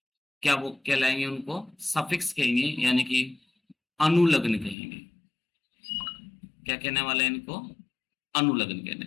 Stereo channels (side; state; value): right; drops out; at 4.8 s